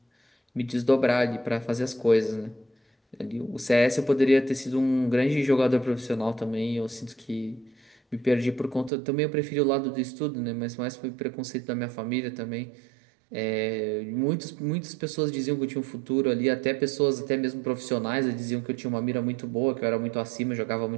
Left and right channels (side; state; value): left; drops out; at 8.9 s